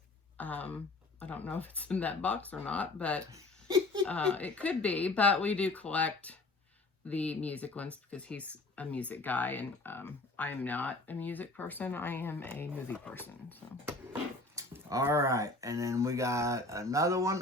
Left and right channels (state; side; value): quieter; right; 3.0 dB